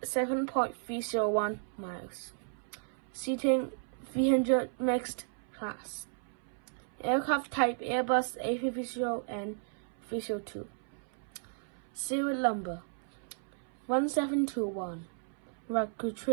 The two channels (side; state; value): left; silent; 55 dB below the other